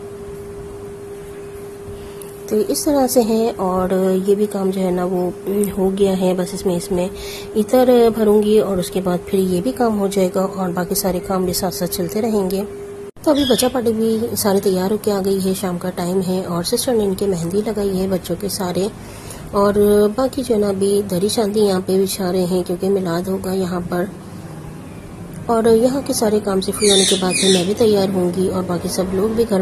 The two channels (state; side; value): identical; both; correlation 1.00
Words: तो इस तरह से है और ये भी काम जो है ना वो हो गया है। बस इसमें इतर भरूंगी और उसके बाद फिर ये भी काम हो जाएगा और बाकी सारे काम भी साथ साथ चलते रहेंगे। तो अभी बच्चा पार्टी भी सारी तैयार होकर आ गई है, शाम का टाइम है और सिस्टर ने इनके मेहंदी लगाई है बच्चों के सारे। और बाकी जो ना अभी दरी शादी यहाँ पे बिछा रहे हैं क्योंकि मिलाद होगा यहाँ पर। और यहाँ के सारे काम से फ्री होने के बाद फिर मैं भी तैयार होंगी और बाकी सब लोग भी